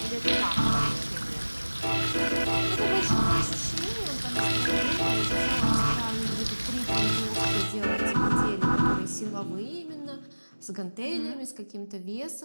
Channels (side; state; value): both; inverted; correlation -1.00